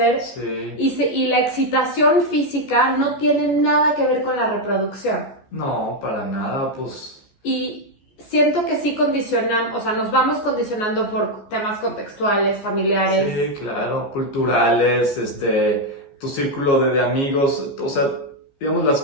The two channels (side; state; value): right; late; 15 ms